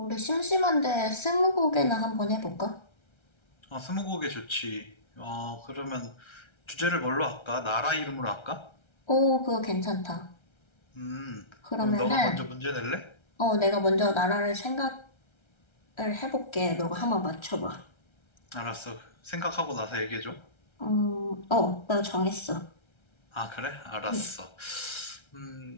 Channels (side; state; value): right; late; 1.3 ms